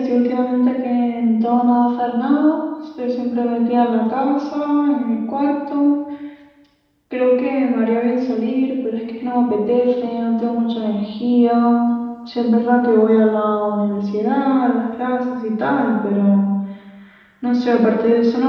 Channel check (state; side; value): identical; both; correlation 1.00